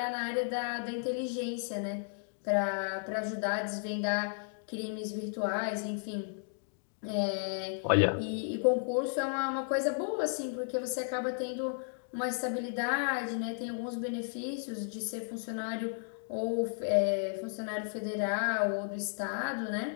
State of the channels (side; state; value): right; silent; digital silence